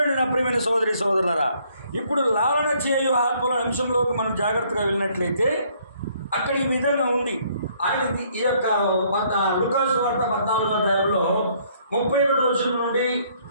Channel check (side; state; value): both; inverted; correlation -0.65